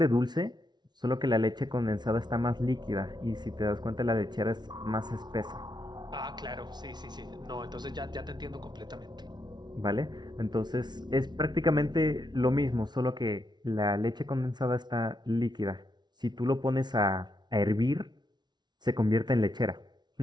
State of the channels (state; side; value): late; left; 0.20 ms